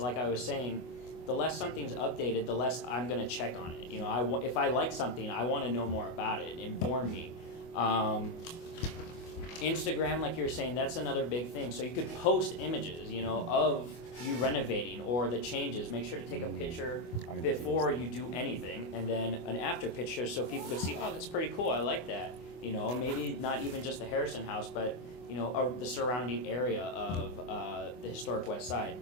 I was saying, the less something's updated, the less I'm going to check on it. If I like something, I want to know more about it, inform me. Instagram, like you were saying, that's another big thing. So you could post images, of you renovating or the changes. Make sure to take a picture before you do anything, and then an after picture so people could see, oh, that's pretty cool, I like that. Maybe not even just the Harrison House, but, the surrounding area of the historic West Side.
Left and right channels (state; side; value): late; right; 24 ms